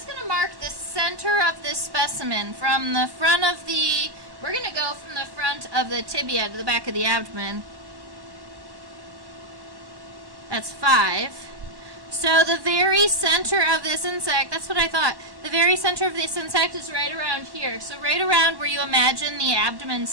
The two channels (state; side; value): late; left; 1.1 ms